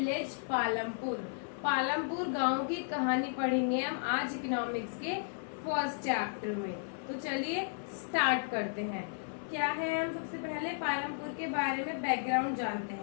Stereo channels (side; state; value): right; silent; 55 dB below the other